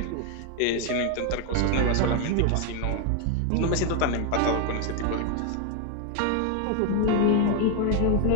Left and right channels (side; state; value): both; different; correlation 0.01